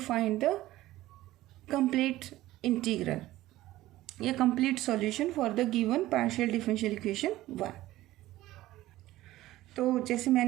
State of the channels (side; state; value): left; quieter; 16.1 dB